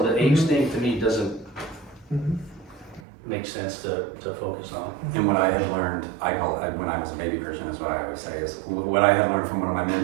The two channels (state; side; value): drops out; left; at 3.0 s